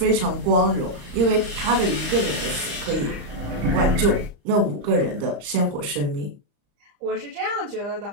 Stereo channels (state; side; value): late; left; 35 ms